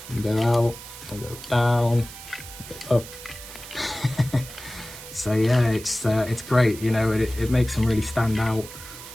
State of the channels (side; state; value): right; noise; hiss, 14 dB below the sound